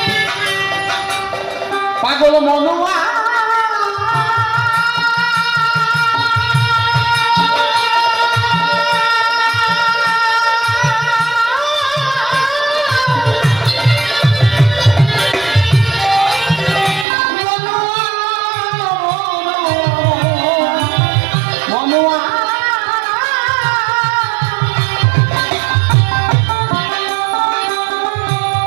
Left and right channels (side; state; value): left; drops out; at 17.1 s